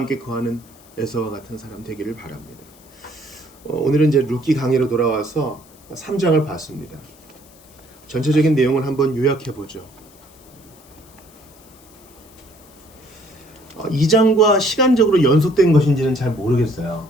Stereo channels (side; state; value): left; noise; hiss, 26 dB below the sound